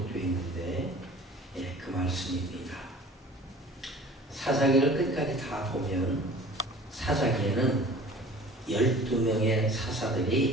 있는데 그 말씀입니다. 사사기를 끝까지 다 보면 사사기에는 12명의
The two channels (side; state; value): both; normal; correlation 0.45